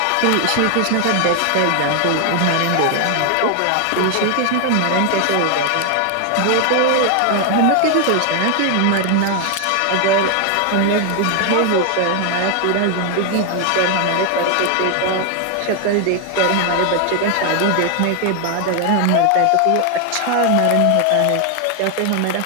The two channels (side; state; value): both; different; correlation 0.00